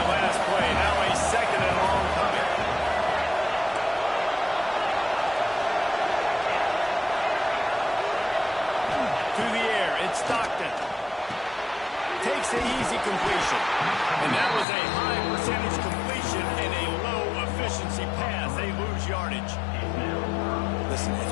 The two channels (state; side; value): drops out; right; at 14.7 s